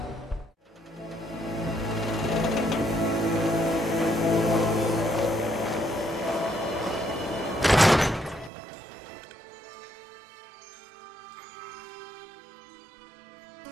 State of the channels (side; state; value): left; drops out; at 8.5 s